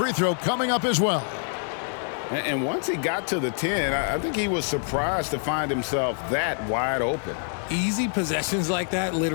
throw coming up as well. And once he got to the 10, I think he was surprised to find himself that wide open. Easy possessions like that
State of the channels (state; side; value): silent; right; 56 dB below the other